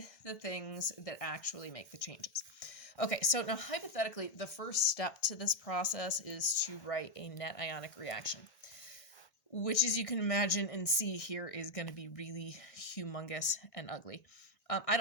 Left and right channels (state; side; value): late; right; 1.6 ms